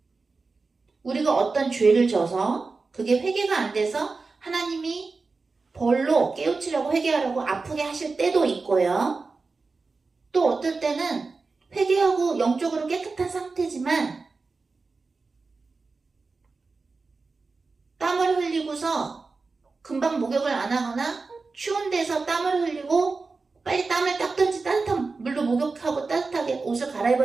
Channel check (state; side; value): quieter; left; 4.1 dB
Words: 우리가 어떤 죄를 져서 그게 회개가 안 돼서 하나님이 벌로 깨우치려고 회개하려고 아프게 하실 때도 있고요. 또 어떨 때는 회개하고 영적으로 깨끗한 상태지만 땀을 흘리고서 금방 목욕을 안 하거나 추운 데서 땀을 흘리고 빨리 땀을 닦든지 따뜻한 물로 목욕하고 따뜻하게 옷을